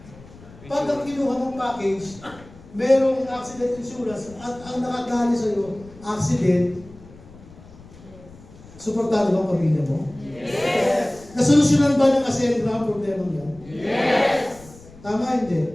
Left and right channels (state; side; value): noise; left; rumble, 21 dB below the sound